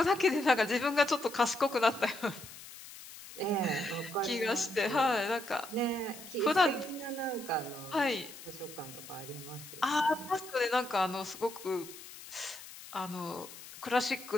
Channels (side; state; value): left; noise; hiss, 15 dB below the sound